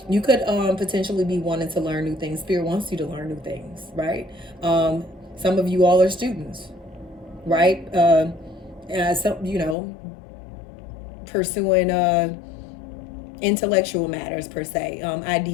you could potentially be wanting to learn new things. Spirit wants you to learn new things, right? Some of you all are students, right? So pursuing intellectual matters per se,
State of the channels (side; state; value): right; drops out; at 9.8 s